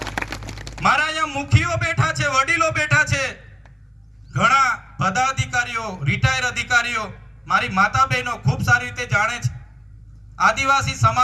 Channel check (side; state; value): both; identical; correlation 1.00